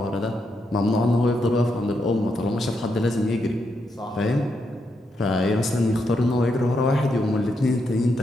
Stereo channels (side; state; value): both; normal; correlation 0.81